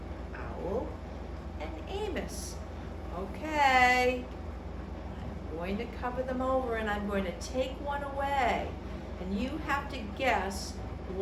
owl, and Amos. Okay, I'm going to cover them over and I'm going to take one away. And you have to guess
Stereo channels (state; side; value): identical; both; correlation 1.00